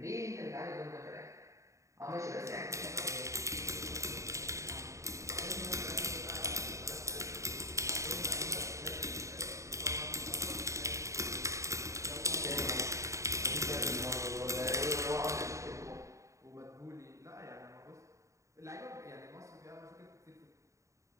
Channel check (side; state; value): left; late; 0.15 ms